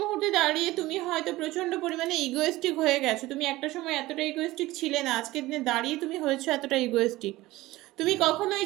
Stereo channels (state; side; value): quieter; left; 18.1 dB